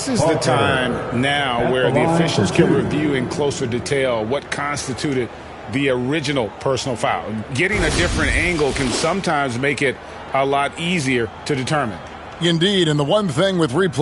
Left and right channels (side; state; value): both; identical; correlation 1.00